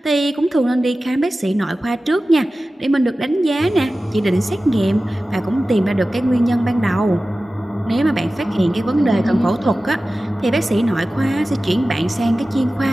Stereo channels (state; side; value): normal; both; correlation 0.96